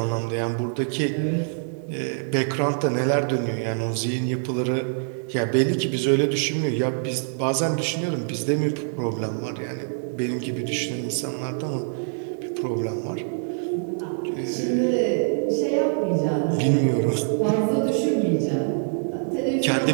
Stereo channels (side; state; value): left; silent; digital silence